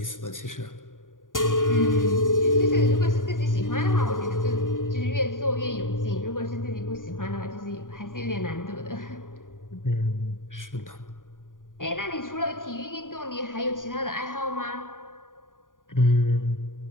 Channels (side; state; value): right; late; 0.89 ms